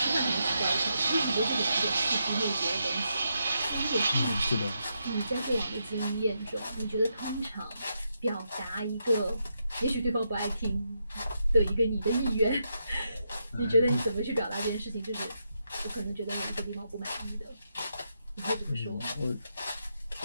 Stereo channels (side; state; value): both; inverted; correlation -0.82